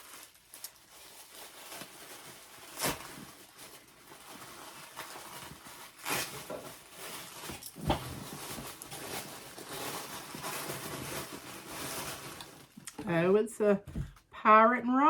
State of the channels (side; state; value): both; identical; correlation 1.00